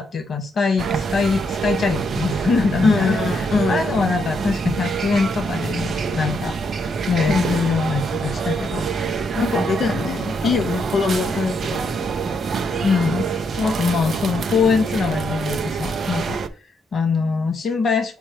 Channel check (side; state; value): both; normal; correlation 0.77